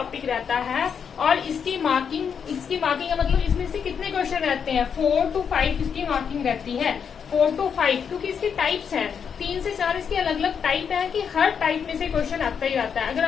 रहता है। और इसकी मार्किंग का मतलब इसमें से कितने क्वेश्चन रहते हैं, 4 to 5 इसकी मार्किंग रहती है। 4 to 5 क्योंकि इसकी टाइप्स हैं, 3 से 4 इसकी अलग अलग टाइप है कि हर टाइप में से क्वेश्चन आता ही आता है। अगर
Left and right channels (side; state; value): right; quieter; 7.0 dB